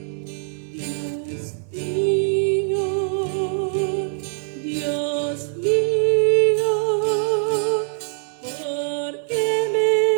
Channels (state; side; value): silent; left; digital silence